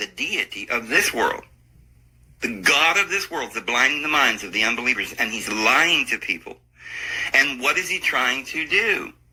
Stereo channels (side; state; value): both; identical; correlation 1.00